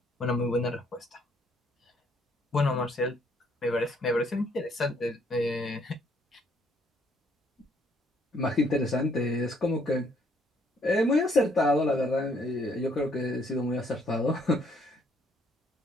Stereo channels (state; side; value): normal; both; correlation 0.67